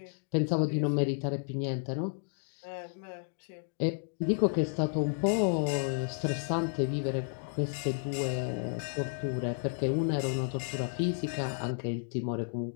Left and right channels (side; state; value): right; silent; digital silence